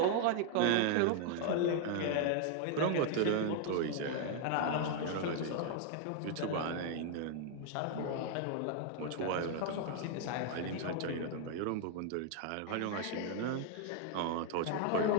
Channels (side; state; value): both; different; correlation 0.00